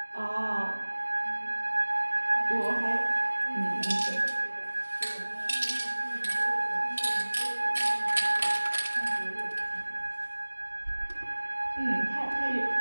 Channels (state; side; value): inverted; both; correlation -1.00